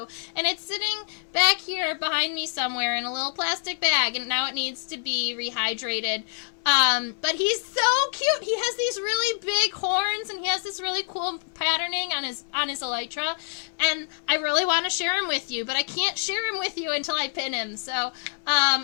and it's sitting back here behind me somewhere in a little plastic bag, and now it needs to be rehydrated. But he's so cute. He has these really big horns, and he has this really cool patterning on his elytra, and I really want to share him with you, but I can't share him with you until I pin him. So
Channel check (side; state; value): right; silent; 61 dB below the other